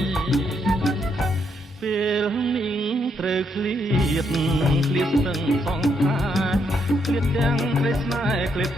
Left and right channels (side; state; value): both; normal; correlation 0.76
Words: ពេលនេះត្រូវឃ្លាតស្ទឹងសងខាឃ្លាតទាំងក្តីស្នេហ៍ឃ្លាត